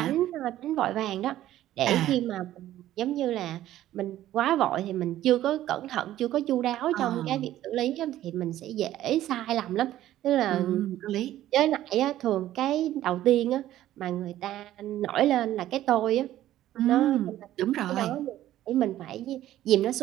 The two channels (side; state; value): left; quieter; 13.5 dB